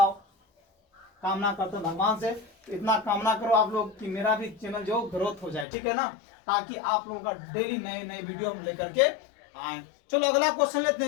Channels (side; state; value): right; drops out; at 5.7 s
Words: कामना करते हैं भगवान से, इतना कामना करो आप लोग कि मेरा भी चैनल जो ग्रोथ हो जाए, ठीक है ना, ताकि आप लोगों का डेली नए नए वीडियो हम लेकर के आए। चलो अगला क्वेश्चन लेते